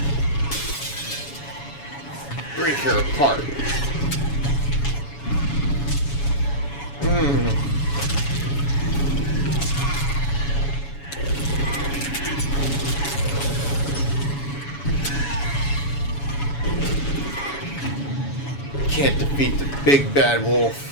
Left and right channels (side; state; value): right; late; 7.1 ms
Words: Break her apart. Can't defeat the big bad